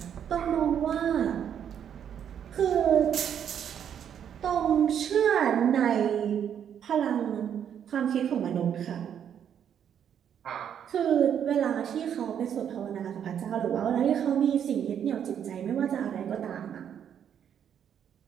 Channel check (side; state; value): left; quieter; 8.8 dB